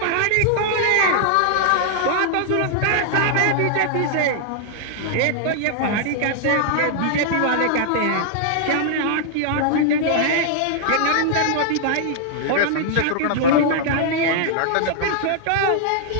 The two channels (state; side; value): different; both; correlation -0.01